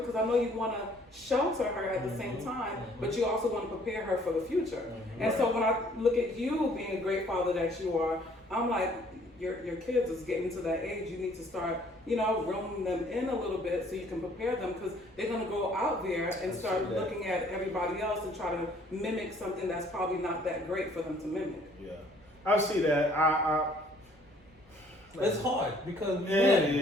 I know you want to shelter her at the same time, but you also want to prepare her for the future. And so when I look at you being a great father that you are, I'm like, your kids is getting to that age. You need to start, reeling them in a little bit so you can prepare them, because they're going to go out there and start looking at everybody else and try to mimic something that's probably not that great for them to mimic. Yeah, I see that. It's hard because it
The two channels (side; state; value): both; normal; correlation 0.59